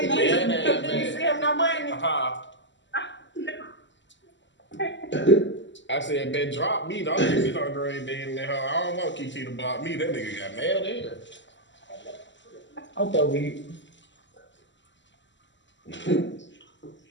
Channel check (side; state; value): right; late; 0.54 ms